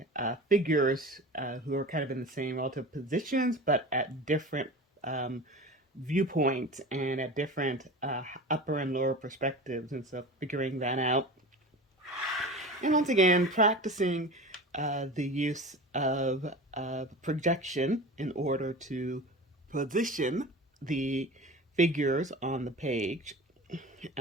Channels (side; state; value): both; normal; correlation 0.33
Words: figures who are kind of in the same relative positions, but at different viewpoints and at different upper and lower perspectives. And so figuring that out. And once again, practicing the use of projection in order to position the figures on the page,